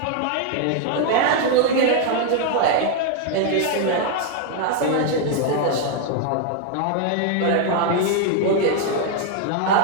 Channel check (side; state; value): both; different; correlation 0.00